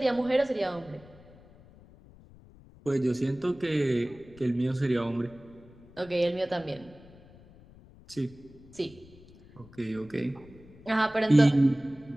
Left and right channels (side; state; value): left; noise; rumble, 23 dB below the sound